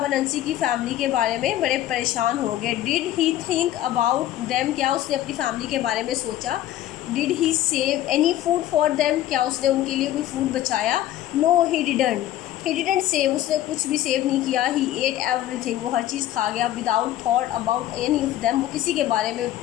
अनंसी की फैमिली के बारे में बड़े परेशान हो गए। Did he think about them, क्या उसने अपनी फैमिली के बारे में सोचा। Did he save any food for them, क्या उसने उनके लिए कोई फूड बचाया। नो ही डिडेंट सेव, उसने कुछ भी सेव नहीं किया। ही एट एवरीथिंग, वो हर चीज़ खा गया। Without thought about any of them, वो किसी के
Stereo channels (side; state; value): right; quieter; 13.2 dB